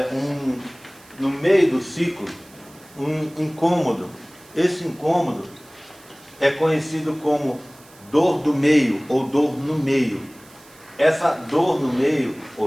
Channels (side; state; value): right; noise; hiss, 25 dB below the sound